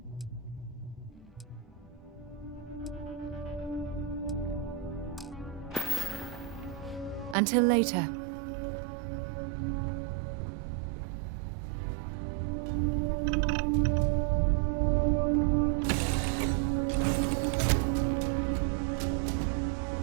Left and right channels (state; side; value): drops out; left; at 7.4 s